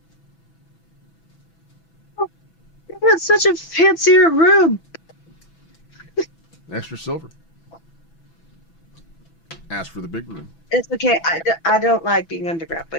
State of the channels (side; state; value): right; late; 6.0 ms